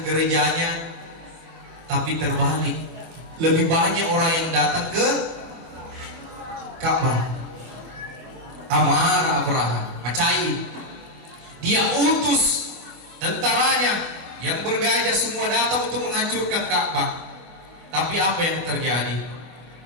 gerejanya. tapi terbalik. Lebih banyak orang yang datang ke Ka'bah. Amarah Abraha, macai. Dia utus tentaranya yang bergajah semua datang untuk menghancurkan Ka'bah. Tapi apa yang terjadi?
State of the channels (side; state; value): left; late; 25 ms